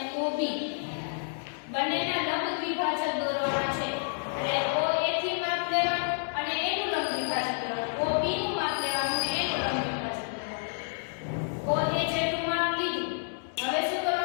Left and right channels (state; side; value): silent; right; digital silence